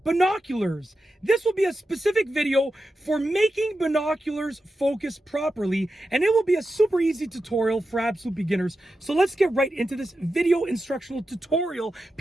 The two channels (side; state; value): both; normal; correlation 0.90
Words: binoculars. This will be a specific video for making binoculars focus properly, and it will be a super easy tutorial for absolute beginners. So let's get right into this video instructional tutorial